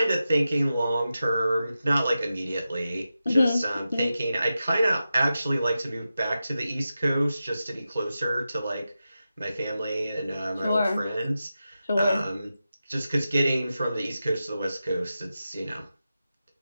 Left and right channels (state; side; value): inverted; both; correlation -0.91